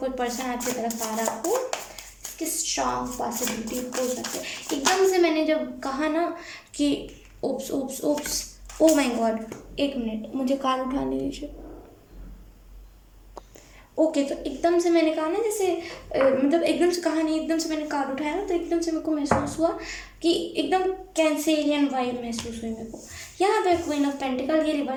पर्सन आपकी तरफ आ रहा हो, इसकी स्ट्रॉन्ग पॉसिबिलिटी हो सकती है। एकदम से मैंने जब कहा ना कि oops oops oops, oh my god, एक मिनट मुझे कार्ड उठाने दीजिए। ओके, तो एकदम से मैंने कहा ना, जैसे मतलब एकदम से कहा नहीं, एकदम से मैंने कार्ड उठाया ना, तो एकदम से मेरे को महसूस हुआ कि एकदम कैंसेरियन वाइब महसूस हुई मेरे को। यहाँ पे क्वीन ऑफ पेंटिकल, ये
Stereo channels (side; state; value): both; identical; correlation 1.00